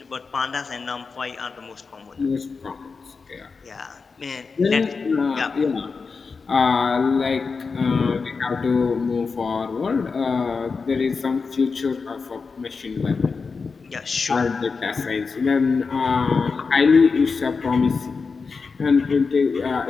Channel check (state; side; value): quieter; right; 4.8 dB